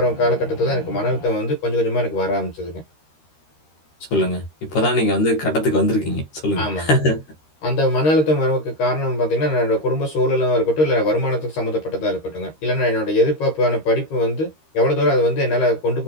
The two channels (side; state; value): right; late; 13 ms